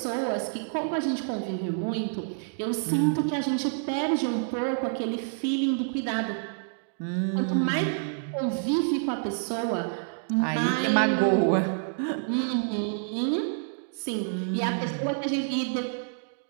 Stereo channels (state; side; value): silent; left; digital silence